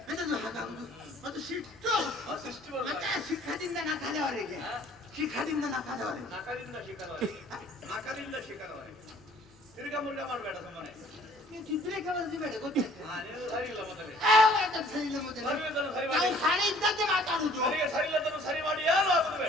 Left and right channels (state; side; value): normal; both; correlation 0.56